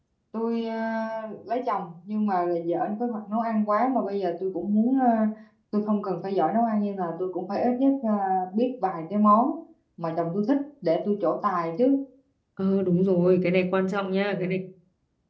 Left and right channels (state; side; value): identical; both; correlation 1.00